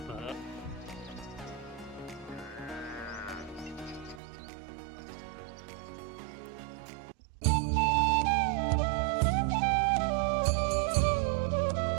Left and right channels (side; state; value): left; drops out; at 4.2 s